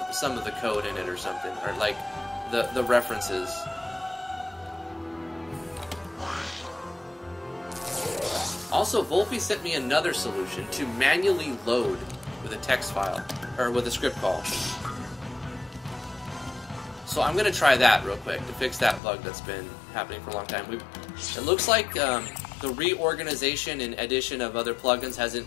of the code in it or something, or like the references. Also, Volpe sent me another solution to manually load with a text file, or with a script call. So I'm going to try that real quick to fix that bug that's been happening for a long time. It looks like the reorganization and addition of other plugins hasn't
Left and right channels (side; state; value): right; drops out; at 19.0 s